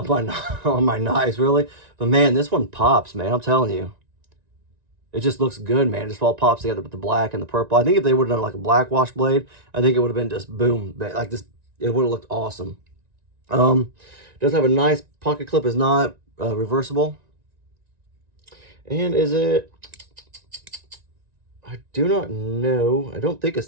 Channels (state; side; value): late; left; 1.9 ms